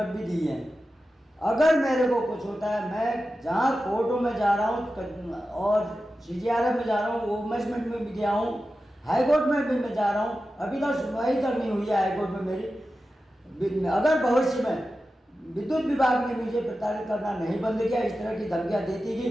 भी दी हैं। अगर मेरे को कुछ होता है, मैं जहाँ कोर्टों में जा रहा हूँ और CGRF में जा रहा हूँ, वुमेन्स में भी गया हूँ, हाई कोर्ट में भी मैं जा रहा हूँ, अभी तक सुनवाई तक नहीं हुई है हाई कोर्ट में मेरी। अगर भविष्य में विद्युत विभाग ने मुझे प्रताड़ित करना नहीं बंद किया, इस तरह की धमकियाँ देती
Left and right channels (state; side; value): normal; both; correlation 0.93